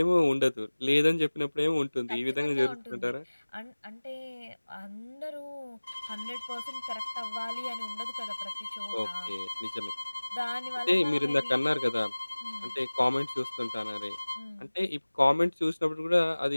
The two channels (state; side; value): inverted; both; correlation -1.00